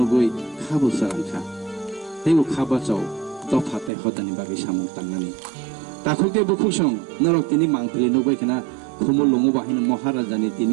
खाबु सारांखा तेबो खाबाचाव दफाताय हदानि बागै सामुं तांनानि ताखुतेबो खुबसं नरक तिनि मांफिलि नुबायखना खुमुल लङो बाहिनो महाराजानि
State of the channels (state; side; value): drops out; left; at 3.9 s